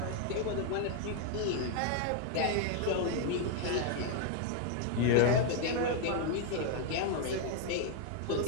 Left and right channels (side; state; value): both; different; correlation 0.00